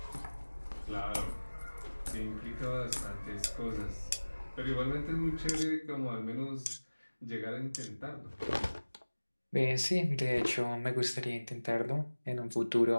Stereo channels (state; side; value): inverted; both; correlation -1.00